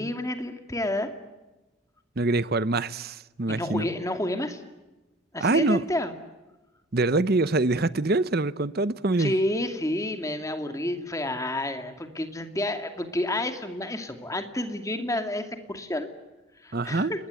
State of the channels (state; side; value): normal; both; correlation 0.49